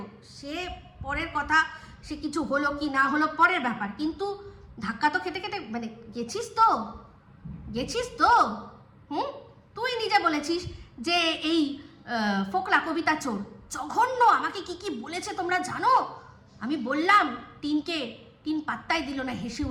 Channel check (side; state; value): both; identical; correlation 1.00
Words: সে পরের কথা, সে কিছু হলো কি না হলো পরের ব্যাপার, কিন্তু ধাক্কা তো খেতে খেতে মানে গেছিস তো। তুই নিজে বলেছিস যে এই ফোকলা কবিতা চোর জঘন্য, আমাকে কি বলেছে তোমরা জানো? আমি বললাম টিন পাত্তাই দিল না, হেসে